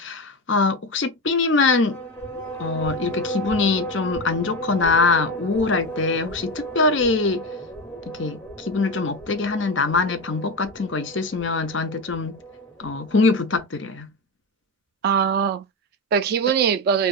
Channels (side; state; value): both; normal; correlation 0.18